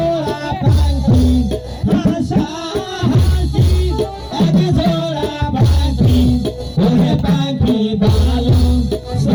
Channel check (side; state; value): both; identical; correlation 1.00